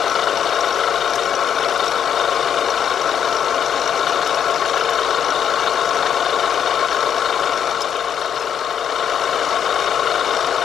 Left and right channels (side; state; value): right; quieter; 8.6 dB